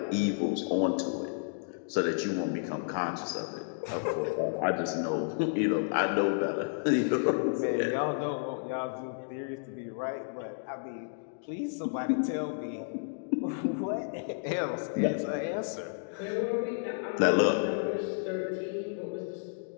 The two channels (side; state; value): right; silent; digital silence